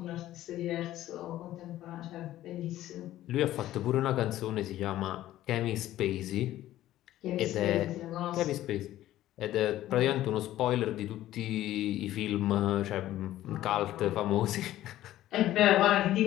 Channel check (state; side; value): quieter; right; 14.0 dB